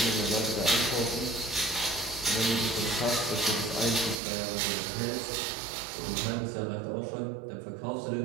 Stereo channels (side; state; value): left; drops out; at 4.2 s